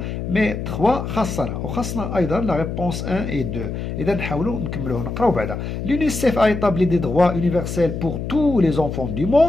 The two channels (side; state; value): left; noise; hum, 5 dB below the sound